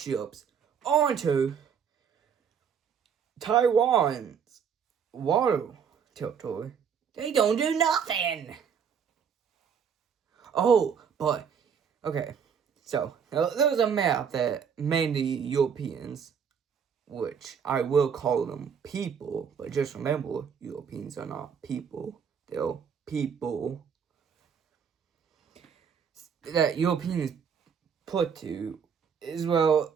onto Taiwan's water territory, they don't do nothing. Oh, but, okay. So, there was a map that mainly Europeans, which I will call them people, but just remember, Europeans are not people. They're people that Europeans put to is, well,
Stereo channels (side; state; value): left; quieter; 7.1 dB